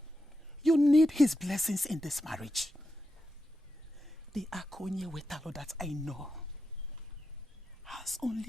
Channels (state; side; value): normal; both; correlation 0.88